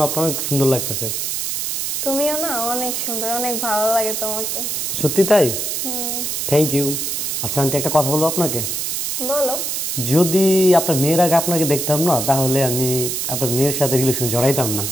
আপনার অনেক সুন্দর লাগতেছে। তুমিও না অনেক সুন্দর, অনেক ভালো লাগে তোমাকে। সত্যি তাই? হুম। Thank you. আচ্ছা আন্টি একটা কথা বলবো আপনাকে? বলো। যদি আপনার মেয়ের আগে আপনাকে দেখতাম না তাহলে আমি আপনার মেয়ের সাথে রিলেশন জড়াইতাম না।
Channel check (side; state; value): right; noise; hiss, 2 dB below the sound